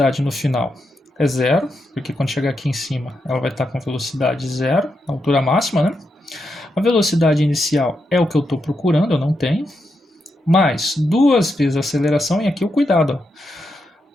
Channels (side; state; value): both; normal; correlation 0.84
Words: no final é 0, porque quando chegar aqui em cima ela vai estar com velocidade 0, altura máxima, né? A velocidade inicial é o que eu estou procurando, eu não tenho. Mais 2 vezes a aceleração, e aqui o cuidado. Ó.